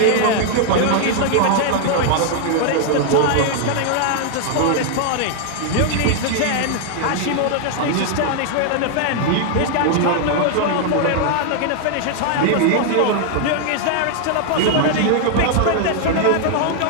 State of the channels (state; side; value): different; both; correlation 0.00